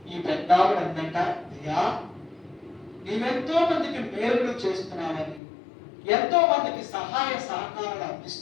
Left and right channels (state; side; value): drops out; right; at 5.4 s